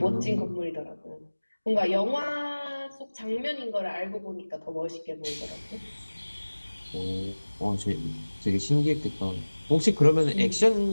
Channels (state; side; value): inverted; both; correlation -1.00